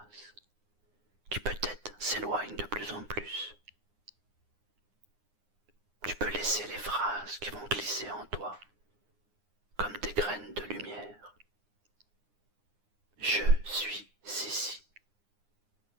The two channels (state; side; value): late; left; 9.7 ms